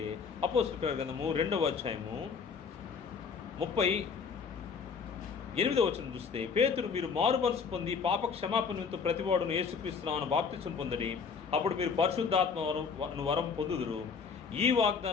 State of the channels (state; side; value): quieter; right; 5.7 dB